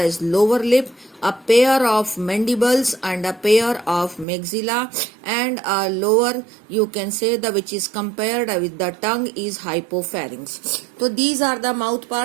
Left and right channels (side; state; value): left; drops out; at 4.2 s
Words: lower lip, a pair of mandibles and a pair of maxilla, and a lower, you can say, the which is compared with the tongue is hypopharynx. So these are the mouth